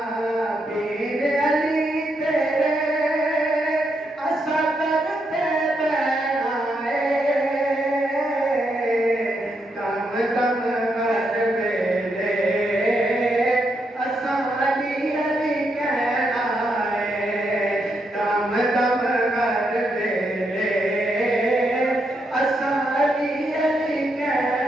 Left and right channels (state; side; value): normal; both; correlation 0.80